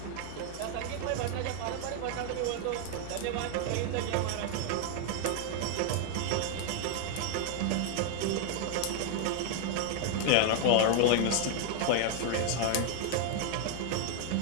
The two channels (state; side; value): different; both; correlation 0.00